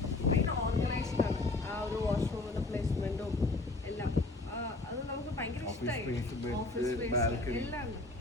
ഓർഗനൈസ്ഡ് ആണ്. ആ ഒരു വാഷ്റൂമിന്റെ പ്ലേസ്മെന്റും എല്ലാം അത് നമുക്ക് ഭയങ്കര ഇഷ്ടമായി. ഓഫീസ് സ്പേസ് എല്ലാം ഉണ്ട്.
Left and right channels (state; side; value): quieter; right; 3.0 dB